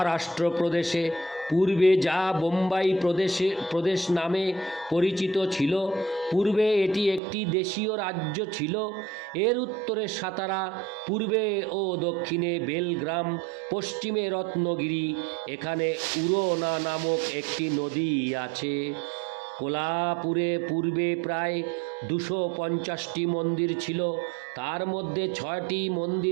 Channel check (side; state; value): left; drops out; at 7.2 s